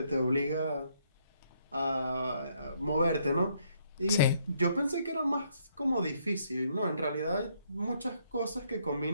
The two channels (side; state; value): both; inverted; correlation -0.70